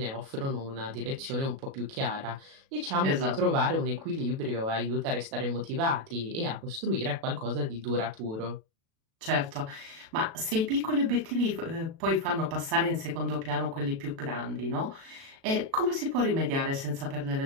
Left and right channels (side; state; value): left; late; 37 ms